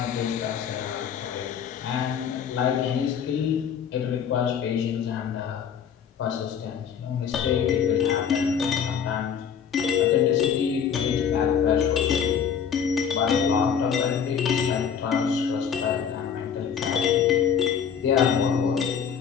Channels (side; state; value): right; quieter; 7.6 dB